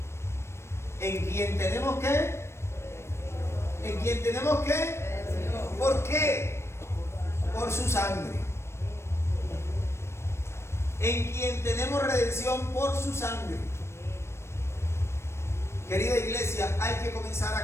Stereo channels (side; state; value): right; late; 0.13 ms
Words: en quien tenemos ¿qué? En quien tenemos ¿qué? ¿Por qué? Por su sangre. En quien tenemos redención por su sangre. Querida iglesia, hay que comenzar